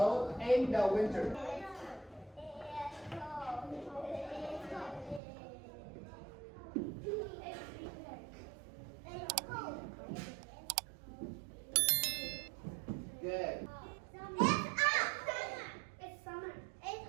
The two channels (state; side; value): drops out; left; at 5.2 s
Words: in the winter. Good. It's summer. It's